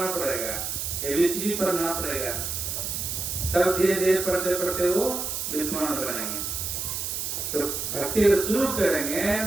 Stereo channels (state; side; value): noise; right; hiss, 3 dB below the sound